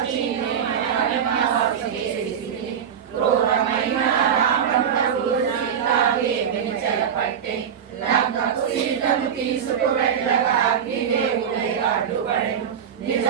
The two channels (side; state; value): left; quieter; 8.1 dB